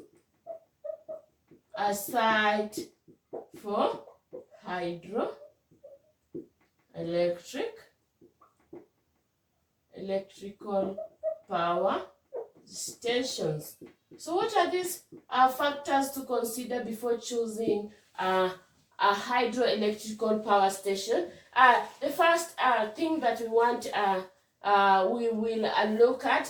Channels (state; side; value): identical; both; correlation 1.00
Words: a site for electrical power stations? So what are these factors to consider before choosing a hydroelectrical power station? The first thing that we will look